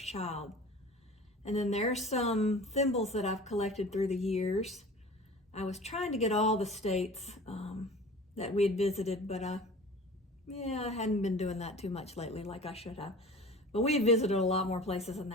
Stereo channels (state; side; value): normal; both; correlation 0.41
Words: child. And then there's some thimbles that I've collected through the years. I was trying to get all the states that we had visited, but I hadn't been doing that too much lately like I should have. But we had visited a lot more places than